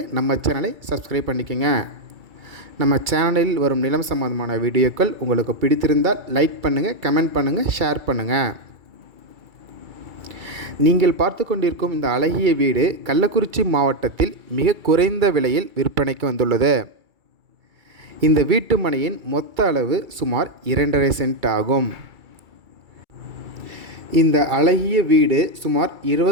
நம்ம சேனலை சப்ஸ்கிரைப் பண்ணிக்கோங்க. நம்ம சேனலில் வரும் நிலம் சம்பந்தமான வீடியோக்கள் உங்களுக்கு பிடித்திருந்தால் லைக் பண்ணுங்கள், கமெண்ட் பண்ணுங்கள், ஷேர் பண்ணுங்கள். நீங்கள் பார்த்து கொண்டிருக்கும் இந்த அழகிய வீடு கள்ளக்குறிச்சி மாவட்டத்தில் மிக குறைந்த விலையில் விற்பனைக்கு வந்துள்ளது. இந்த வீட்டு மனையின் மொத்த அளவு சுமார் 2.5 சென்ட் ஆகும். இந்த அழகிய வீடு சுமார்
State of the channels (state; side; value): late; left; 2.3 ms